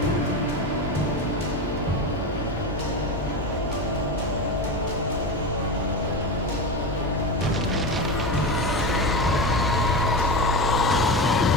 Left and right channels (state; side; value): normal; both; correlation 0.21